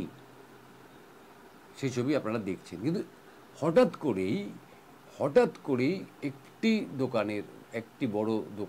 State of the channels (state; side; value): identical; both; correlation 1.00